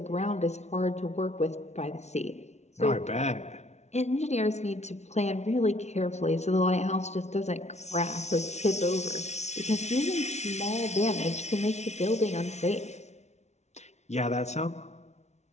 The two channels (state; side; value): late; right; 0.32 ms